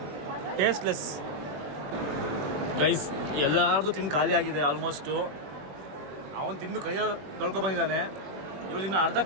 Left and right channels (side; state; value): left; late; 21 ms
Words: Tasteless guys. ಎಲ್ಲಾರ್ದು ತಿಂದು ಖಾಲಿ ಆಗಿದೆ ಆಲ್ಮೋಸ್ಟು. ಅವನು ತಿಂದು ಕೈಯಲ್ಲಿ ತೊಳ್ಕೊಬಂದಿದ್ದಾನೆ. ಇವ್ರು ಇನ್ನು ಅರ್ಧ